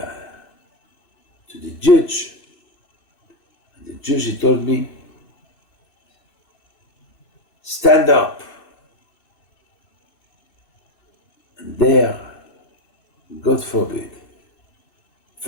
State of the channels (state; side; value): late; right; 2.6 ms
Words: the judge. And the judge, he told me, stand up. And there, God forbid,